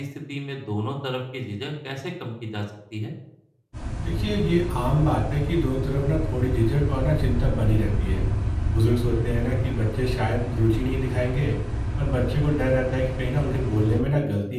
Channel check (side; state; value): both; identical; correlation 1.00